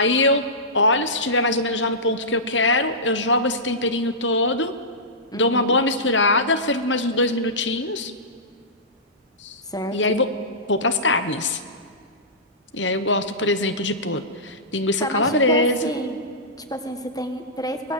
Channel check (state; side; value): normal; both; correlation -0.18